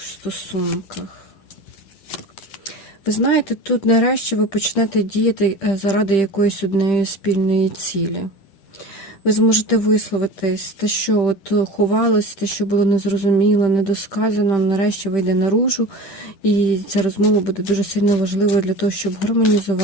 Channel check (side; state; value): right; late; 10 ms